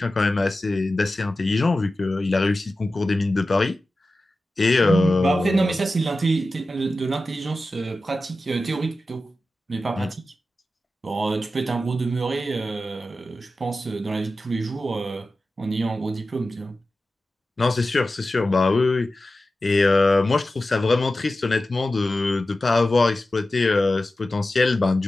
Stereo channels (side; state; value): both; normal; correlation 0.94